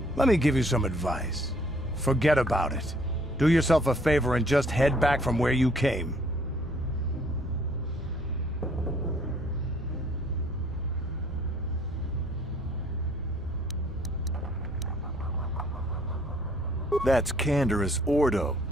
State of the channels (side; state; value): both; normal; correlation 0.61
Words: Let me give you some advice. Forget about it. Do yourself a favor and just head back from where you came. That's Canderous Ordo.